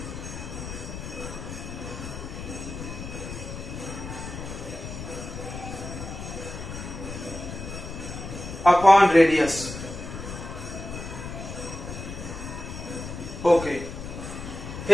upon radius. Okay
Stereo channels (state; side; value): noise; left; rumble, 8 dB below the sound